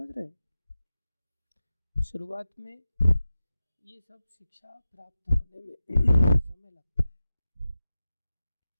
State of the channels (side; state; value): both; inverted; correlation -0.93